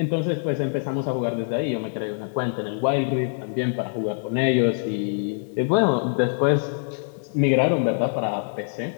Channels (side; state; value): right; silent; digital silence